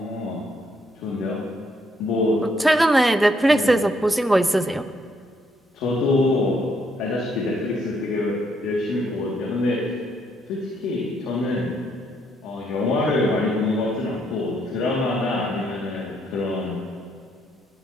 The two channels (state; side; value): normal; both; correlation 0.73